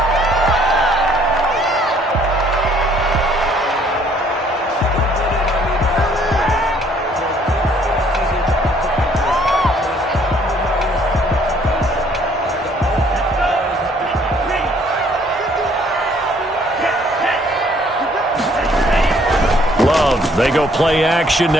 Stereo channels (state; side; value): normal; both; correlation 0.62